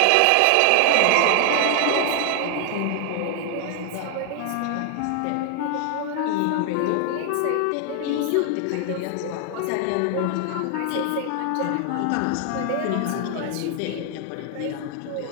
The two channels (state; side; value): different; both; correlation 0.00